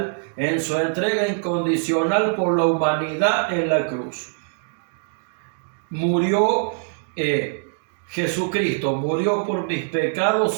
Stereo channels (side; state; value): left; silent; digital silence